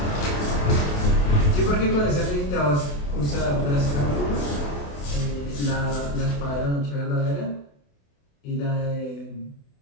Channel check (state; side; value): late; right; 28 ms